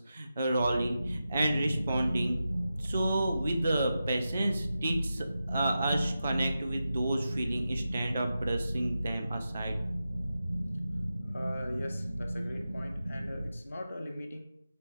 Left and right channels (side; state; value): both; inverted; correlation -0.91